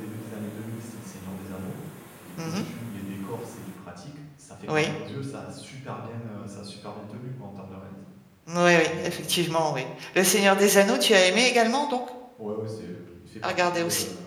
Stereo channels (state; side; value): identical; both; correlation 1.00